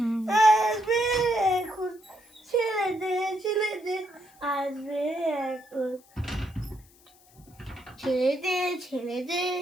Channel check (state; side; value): noise; left; hiss, 28 dB below the sound